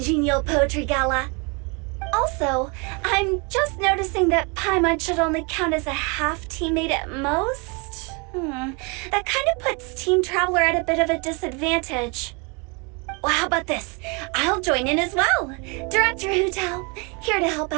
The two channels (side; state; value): left; quieter; 31.5 dB